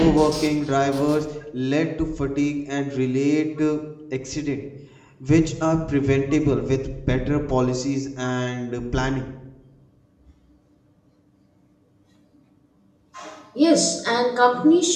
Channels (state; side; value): identical; both; correlation 1.00